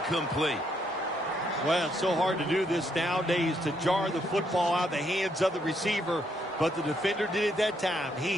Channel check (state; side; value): normal; both; correlation 0.74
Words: Well, it's so hard to do this nowadays, to jar the football out of the hands of the receiver, but the defender did it that time. He